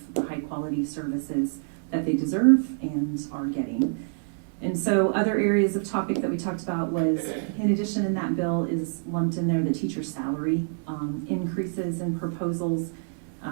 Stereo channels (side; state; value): left; silent; 60 dB below the other